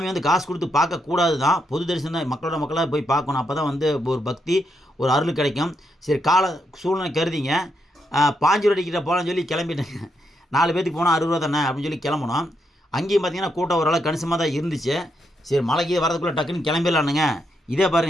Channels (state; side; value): normal; both; correlation 0.80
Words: வந்து காசு கொடுத்து பார்க்கக்கூடாது தான், பொது தரிசனம் தான், மக்களாக போய் பார்க்கணும். அப்போ தான் வந்து ஒரு பக்தி, ஒரு அருள் கிடைக்கும். சரி கால சூழ்நிலை கருதிங்க 5 ரூபா டிக்கெட்டை போகலான்னு சொல்லி கிளம்பிட்டேங்க. 4 பேருக்கு போனால் 60 ரூபா தானே அப்படின்னு சொல்லி கிளம்பணும். அங்கேயும் பார்த்தீங்கன்னா கூட்டம் ஓரளவு கணிசமாக தான் இருந்துச்சு. சரி மலைக்கு வரதுக்குள்ளே டக்குன்னு கிளம்பிடலானுங்க. இதே